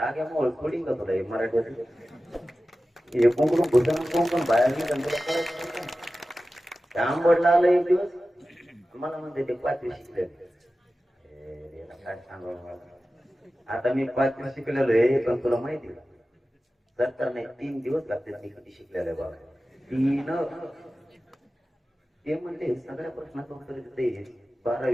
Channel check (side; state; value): both; normal; correlation 0.95